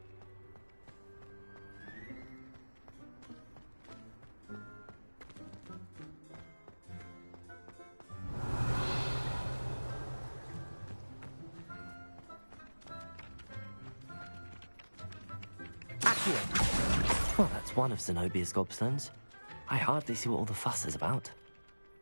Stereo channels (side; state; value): both; inverted; correlation -1.00